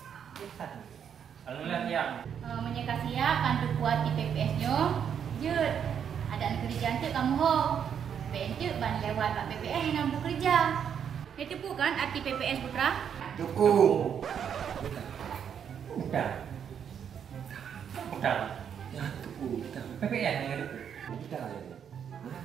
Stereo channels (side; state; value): left; quieter; 8.1 dB